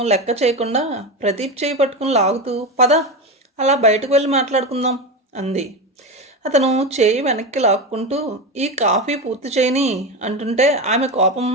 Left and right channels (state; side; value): normal; both; correlation 0.19